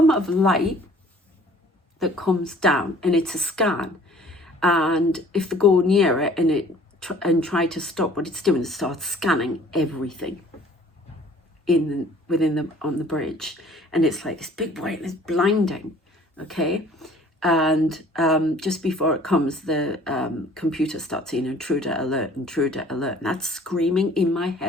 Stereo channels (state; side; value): normal; both; correlation 0.53